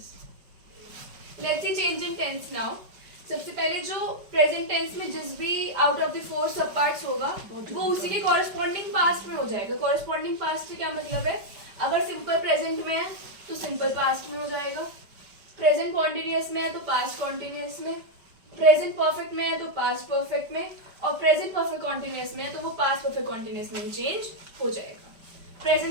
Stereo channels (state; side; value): late; left; 5.2 ms